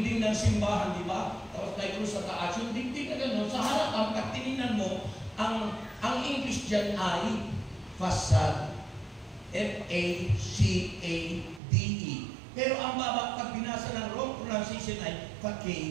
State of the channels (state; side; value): drops out; left; at 11.6 s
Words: ng simbahan, di ba? Tapos tayo sa taas, yung dingding na gano'n, sa harapan, pag tinignan mo, ang English dyan ay facade. F-A-C-A-D-E. Pero ang baba, pag binasa ng wrong pronunciation ay